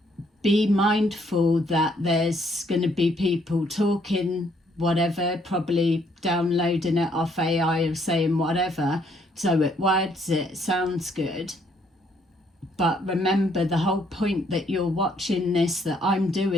be mindful that there's going to be people talking whatever, probably downloading it off AI or saying whatever, so it words, it sounds good. But remember, the whole point that you're watching this, that I'm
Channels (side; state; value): both; normal; correlation 0.68